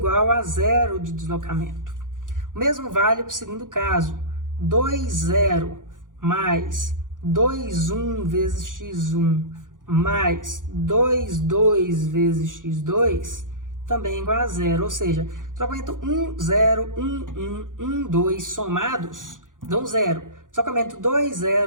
a 0 de deslocamento. O mesmo vale para o segundo caso, 2, 0, mais 2, 1 vezes x1, mais 2, 2 vezes x2, também é igual a 0. Ou seja, deslocamento 1, 0, 1, 1, 1, 2 somados dão 0. Deslocamento 2,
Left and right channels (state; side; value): late; left; 0.88 ms